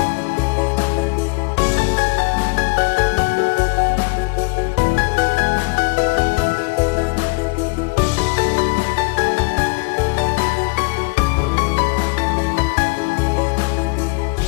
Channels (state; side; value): quieter; right; 29.5 dB